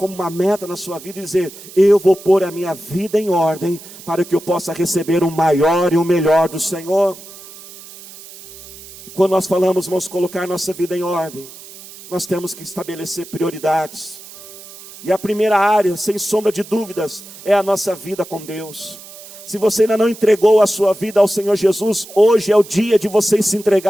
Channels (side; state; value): right; noise; hiss, 17 dB below the sound